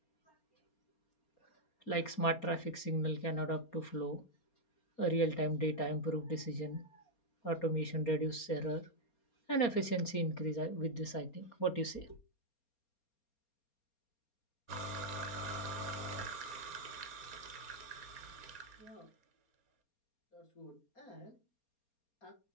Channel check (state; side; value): late; right; 4.3 ms